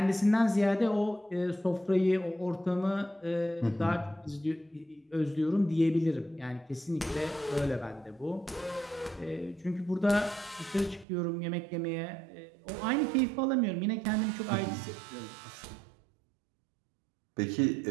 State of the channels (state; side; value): drops out; left; at 11.1 s